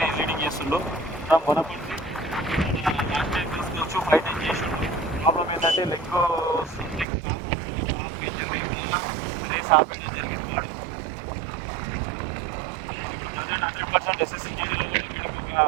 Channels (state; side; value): drops out; left; at 7.1 s